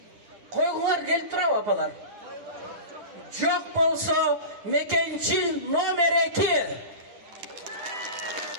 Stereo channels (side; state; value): left; late; 10 ms